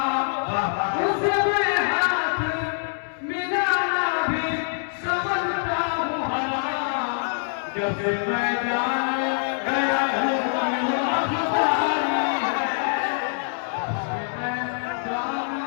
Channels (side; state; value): right; silent; digital silence